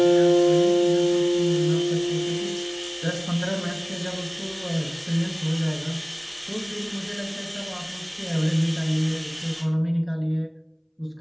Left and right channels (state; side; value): identical; both; correlation 1.00